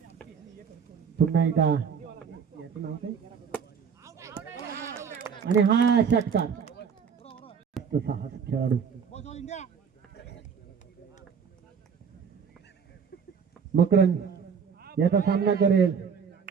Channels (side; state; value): left; quieter; 6.6 dB